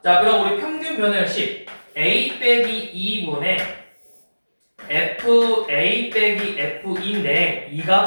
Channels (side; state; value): both; inverted; correlation -1.00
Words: 자, 그럼 우리 평균 변화율식 a 빼기 2분의 fa 빼기 f인데 이